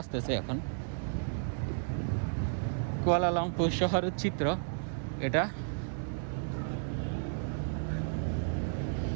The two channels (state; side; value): silent; left; digital silence